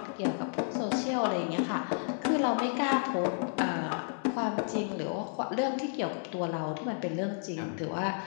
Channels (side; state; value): right; silent; 57 dB below the other